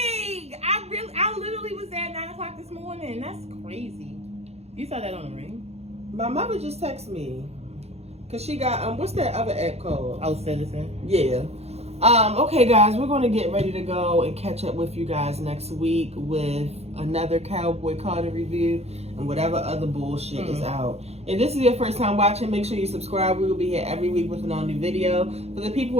I literally was there at 9 o'clock this morning. That's crazy. You saw that on the ring? My mother just texted me because she got what's that other app called? Oh, Citizen. Yeah. Okay, guys, we're going to get ready to go and catch up with you guys next week with another Cowboy Carter review and whatever other bullshit is out. If this is your first time watching, make sure you subscribe. We will be here every week with an all-new video. For the people who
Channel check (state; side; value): late; left; 0.31 ms